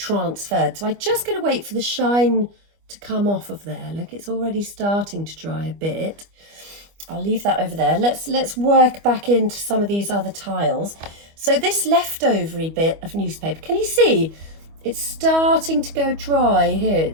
So I'm just going to wait for the shine to come off of there. Look, it's already starting to dry a bit. I'll leave that over there. Let's work back into some of these other tiles. So this leftovery bit of newspaper, can you see? It's starting to go dry here.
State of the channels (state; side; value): late; left; 25 ms